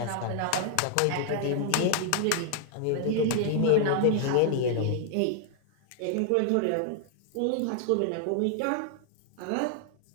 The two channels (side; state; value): both; different; correlation 0.00